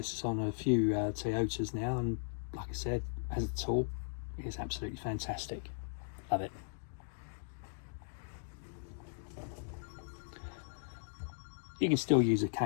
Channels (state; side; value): silent; right; digital silence